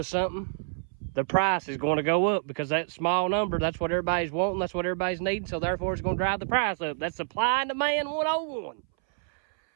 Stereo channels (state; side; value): silent; left; 60 dB below the other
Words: something, the price is going to go up, because that small number, that's what everybody's wanting, that's what everybody's needing, so therefore it's going to drive the price up. That's supply and demand 101.